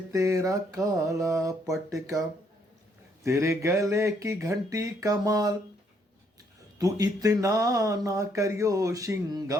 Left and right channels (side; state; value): both; normal; correlation 0.70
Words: तेरा काला पटका। तेरे गले की घंटी कमाल, तू इतना ना करियो